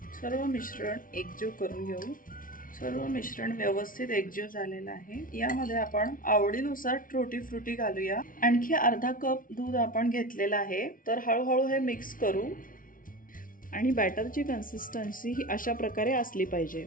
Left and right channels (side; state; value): right; late; 0.39 ms